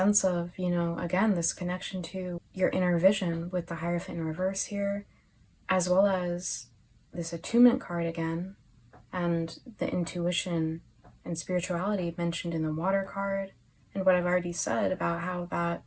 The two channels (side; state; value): both; identical; correlation 1.00